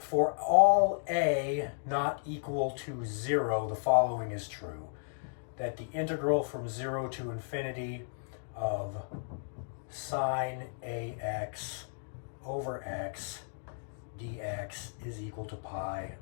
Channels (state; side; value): silent; right; digital silence